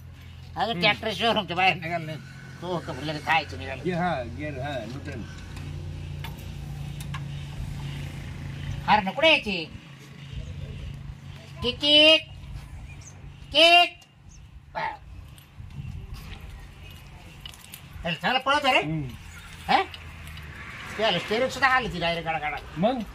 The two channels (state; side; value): identical; both; correlation 1.00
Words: अजून ट्रॅक्टर शोरूमच्या बाहेर निघाल नाही तो लगेच खायचं निघाल. घे, हा गेर हा नूतन. अरे ना कुठे यायची तिकीट तिकीट चांगलं पळत रे. हा त्याला स्टेरिंग सुद्धा आली ती डायरेक्ट गाडा गाडा. मग